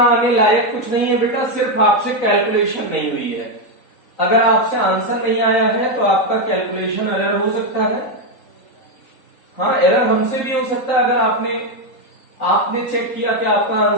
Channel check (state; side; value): late; right; 3.9 ms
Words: आने लायक कुछ नहीं है बेटा, सिर्फ आपसे कैलकुलेशन नहीं हुई है। अगर आपसे आंसर नहीं आया है तो आपका कैलकुलेशन एरर हो सकता है। हाँ, एरर हमसे भी हो सकता है। अगर आपने चेक किया कि आपका